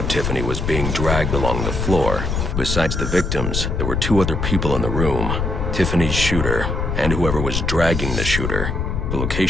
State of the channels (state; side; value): noise; left; rumble, 1 dB below the sound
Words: Tiffany was being dragged along the floor. Besides the victims, there were two other people in the room. Tiffany's shooter, and whoever was dragging the shooter. The